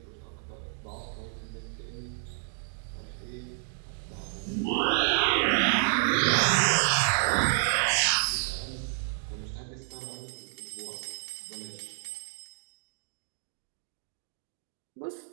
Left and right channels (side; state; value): left; silent; digital silence